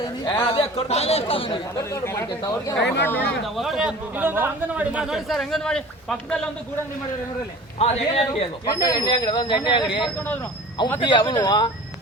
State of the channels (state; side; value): normal; both; correlation 0.42